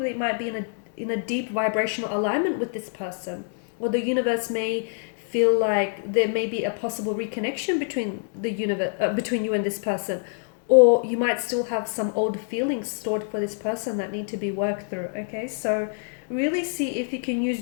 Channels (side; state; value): right; silent; 61 dB below the other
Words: might be in a deep vibrational alignment with this person, or the universe may feel like there may be a possible reconnection between between you and this person, or you might still have some old feelings stored for this person that need to be worked through. Okay, so really see if you can